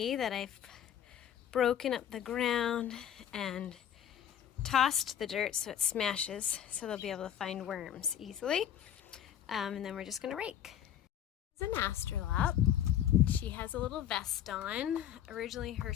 that I've broken up the ground and tossed the dirt so it smashes, so they'll be able to find worms easily. And then we're just gonna rake. This is an astrolop. She has a little vest on. Originally her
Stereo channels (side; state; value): right; quieter; 10.1 dB